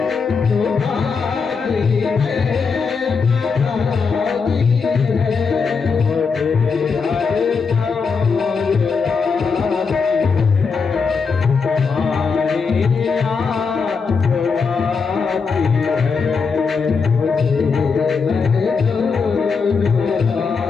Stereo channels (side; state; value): right; quieter; 5.2 dB